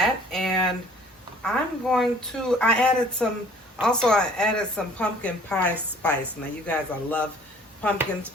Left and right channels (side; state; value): both; normal; correlation 0.53